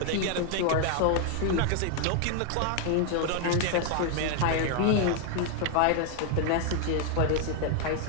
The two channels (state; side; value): different; both; correlation 0.00